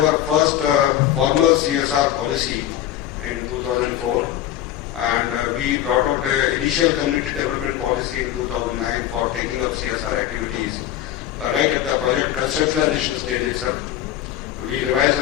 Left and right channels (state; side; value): quieter; right; 12.2 dB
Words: first formal CSR policy in 2004, and we brought out an initial community development policy in 2009 for taking up CSR activities right at the project conceptualization stage itself. We revised